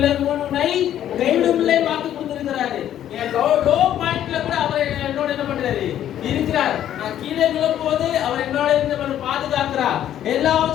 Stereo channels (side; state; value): right; quieter; 11.1 dB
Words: உன்னை கைவிடும் இல்லை வாக்கு கொடுத்திருக்கிறாரு. என் லோ பாயிண்ட்ல கூட அவர் என்னோட என்ன பண்றாரு? இருக்கிறார். நான் கீழே விழும்போது அவர் என்னோட இருந்து பாதுகாக்கிறார்.